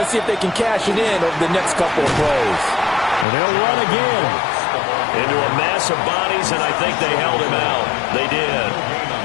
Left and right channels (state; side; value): drops out; right; at 3.2 s